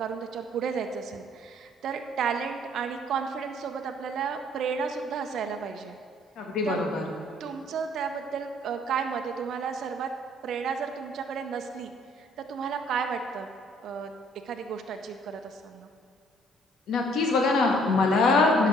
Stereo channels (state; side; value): normal; both; correlation 0.60